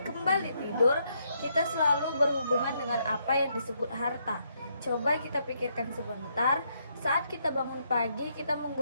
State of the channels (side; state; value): both; inverted; correlation -0.75